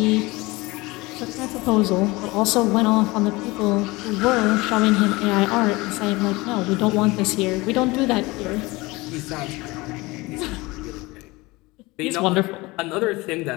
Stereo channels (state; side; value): quieter; right; 22.4 dB